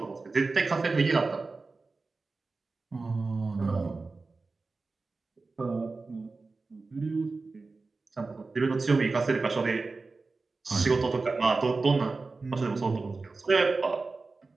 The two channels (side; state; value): left; quieter; 3.8 dB